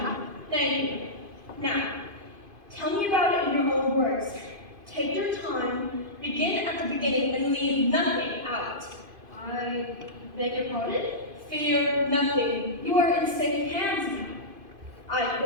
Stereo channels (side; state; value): left; late; 2.5 ms